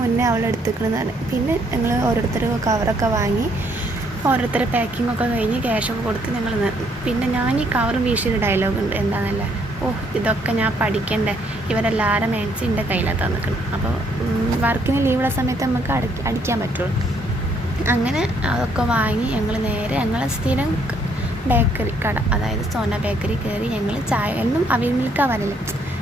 മുന്നേ അവൾ എടുത്തിക്കുന്നതാണ്. പിന്നെ ഞങ്ങൾ ഓരോരുത്തർ കവറൊക്കെ വാങ്ങി, ഓരോരുത്തരെ പാക്കിങ്ങൊക്കെ കഴിഞ്ഞ് ക്യാഷൊക്കെ കൊടുത്ത് ഞങ്ങൾ. പിന്നെ ഞാൻ ഈ കവറും വീശിയൊരു ഡയലോഗ് ഉണ്ട്, എന്താണെന്നല്ലേ, ഇതൊക്കെ ഞാൻ പഠിക്കണ്ടേ, ഇവരെല്ലാവരും മാക്സി എൻ്റെ കയ്യിലാണ് തന്നിക്കണം. അപ്പോൾ വർക്കിന് ലീവുള്ള സമയത്ത് നമുക്ക് അടിക്കാൻ പറ്റുള്ളൂ. അങ്ങനെ അതൊക്കെ വാങ്ങി ഞങ്ങൾ നേരെ ഞങ്ങളെ സ്ഥിരം ബേക്കറി കട, അതായത് സോന ബേക്കറി കയറി. ഞങ്ങൾ ചായ എന്നും അവിൽ മിൽക്കാണ് വരല്,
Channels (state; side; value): normal; both; correlation 0.68